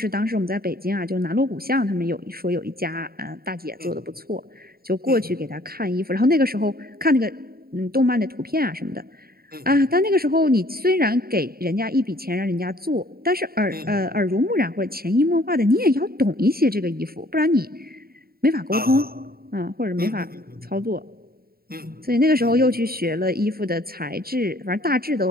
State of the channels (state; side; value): late; left; 0.44 ms